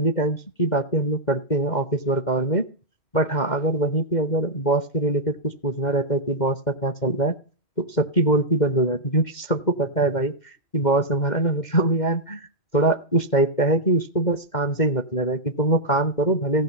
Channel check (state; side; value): late; right; 2.1 ms